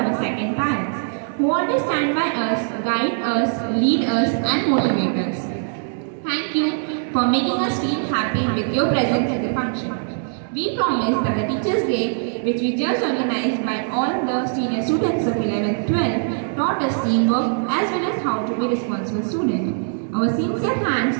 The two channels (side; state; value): left; silent; 65 dB below the other